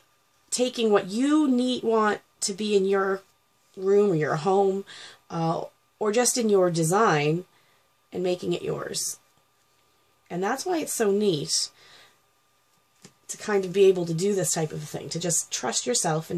taking what you want to be in your room or your home, or just in your design, and making it yours. And that's why it's so neat to kind of be able to do this type of thing, to just trust yourself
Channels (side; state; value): both; identical; correlation 1.00